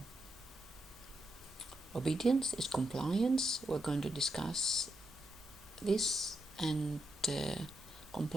obedience is compliance. We're going to discuss this, and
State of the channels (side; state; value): both; normal; correlation 0.83